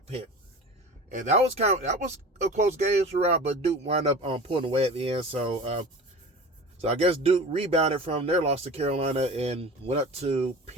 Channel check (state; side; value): normal; both; correlation 0.36